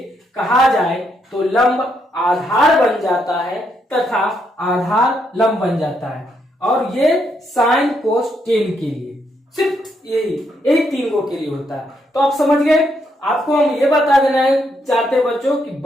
कहा जाए तो लंब आधार बन जाता है तथा आधार लंब बन जाता है, और ये साइन कोस टेन के लिए सिर्फ यही तीन गो के लिए होता है। तो आप समझ गए। आपको हम ये बता देना चाहते हैं बच्चों कि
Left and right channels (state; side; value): normal; both; correlation 0.77